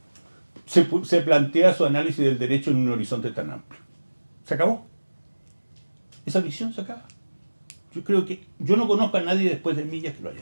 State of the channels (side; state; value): both; inverted; correlation -1.00